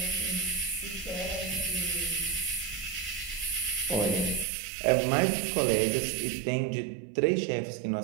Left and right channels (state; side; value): drops out; left; at 4.5 s